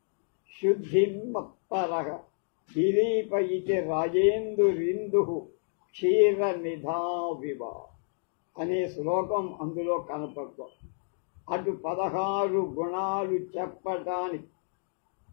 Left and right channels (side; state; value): right; silent; digital silence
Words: శుద్ధిమప్పరః దిలీప ఇతి రాజేందురిందు క్షీర నిధావివ అనే శ్లోకం అందులో కనపడుతుంది. అటు 16 గుణాలు చెప్పటానికి